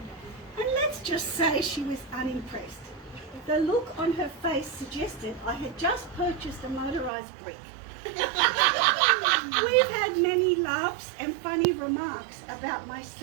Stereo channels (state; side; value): drops out; left; at 7.1 s